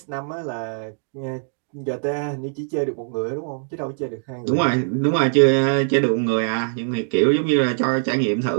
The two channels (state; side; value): silent; left; digital silence